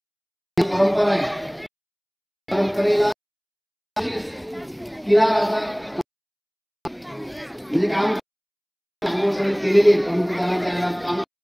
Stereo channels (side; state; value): both; identical; correlation 1.00